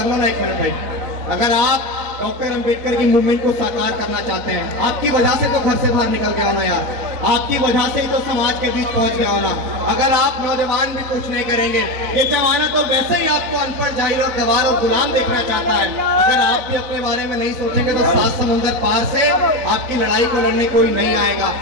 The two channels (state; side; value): late; left; 3.9 ms